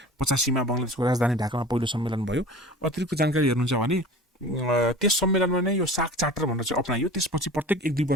बङ्गलादेशको राजधानी ढाकामा पहिलो सम्मेलन भयो। अतिरिक्त जानकारी हेर्नुहुन्छ भने त्यस सम्मेलनमा नै यो सार्क चार्टर भनेर चाहिँ अपनाइयो, त्यसपछि प्रत्येक 1-2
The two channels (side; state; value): both; normal; correlation 0.39